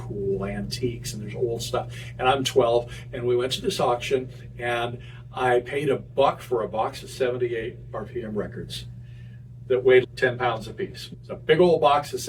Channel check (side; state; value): both; identical; correlation 1.00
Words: antiques, and there's old stuff. And I'm 12, and we went to this auction, and I paid $1 for a box of 78 RPM records that weighed 10 pounds apiece. It's a big old box of